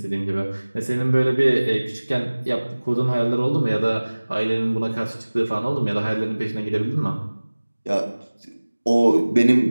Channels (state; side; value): inverted; both; correlation -1.00